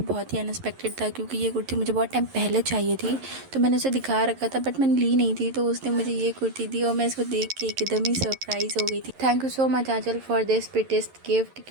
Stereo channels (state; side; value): late; left; 11 ms